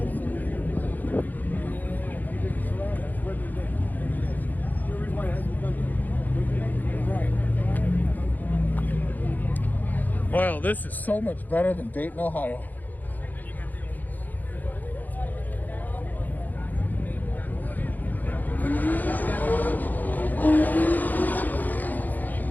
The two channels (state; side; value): late; right; 0.084 ms